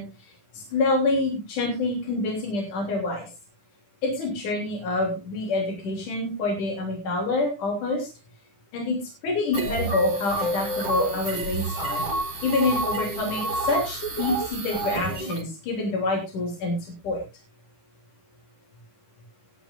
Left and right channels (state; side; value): late; right; 10 ms